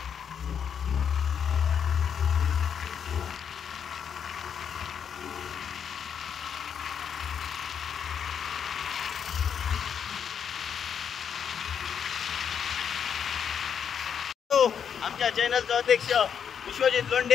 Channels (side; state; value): right; quieter; 7.7 dB